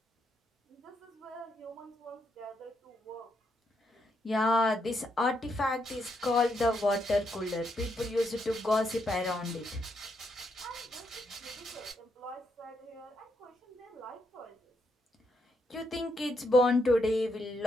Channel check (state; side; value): normal; both; correlation 0.79